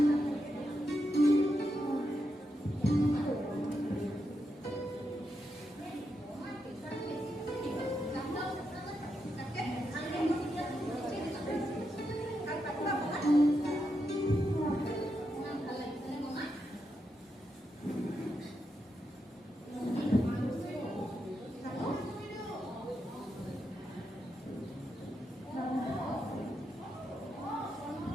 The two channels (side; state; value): both; normal; correlation 0.84